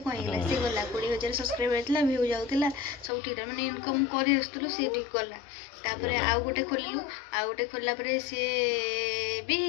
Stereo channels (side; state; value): right; drops out; at 3.1 s